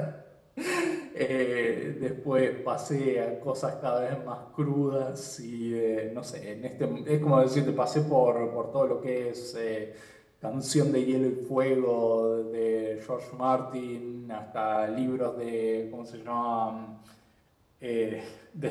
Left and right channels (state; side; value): identical; both; correlation 1.00